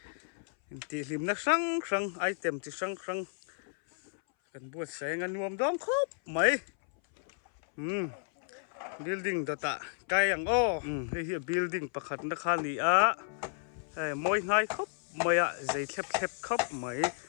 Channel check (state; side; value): silent; right; 56 dB below the other